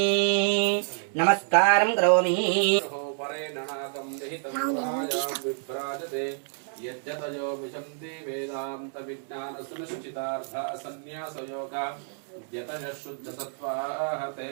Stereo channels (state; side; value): silent; left; 59 dB below the other